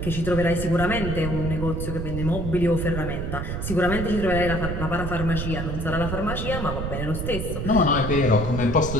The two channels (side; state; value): right; noise; rumble, 4 dB below the sound